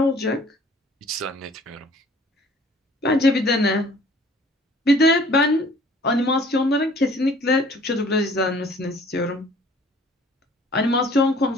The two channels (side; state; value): both; normal; correlation 0.54